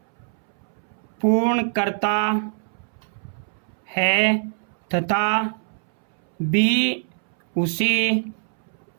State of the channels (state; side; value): silent; left; 63 dB below the other